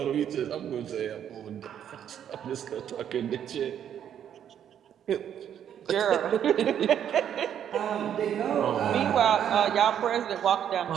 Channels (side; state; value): left; quieter; 9.5 dB